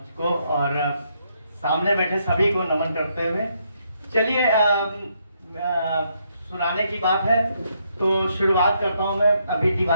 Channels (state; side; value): inverted; both; correlation -0.75